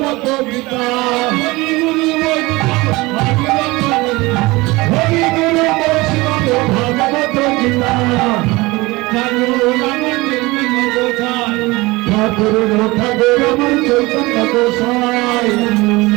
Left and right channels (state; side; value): quieter; left; 22.1 dB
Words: গীতা হরি গুরু বৈষ্ণব ভাগবত গীতা ঠাকুর ঠাকুর আমার চৈতন্য গোসাই